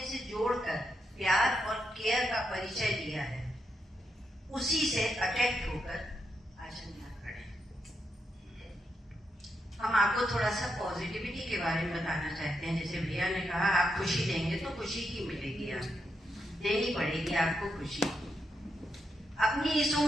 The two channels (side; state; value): both; normal; correlation 0.83